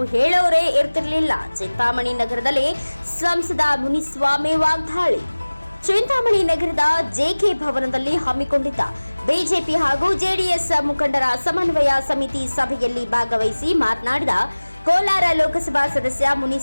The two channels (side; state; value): both; inverted; correlation -1.00